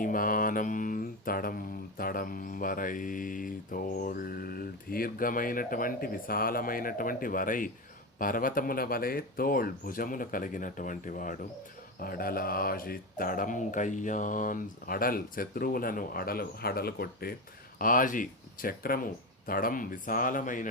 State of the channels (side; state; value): both; normal; correlation 0.18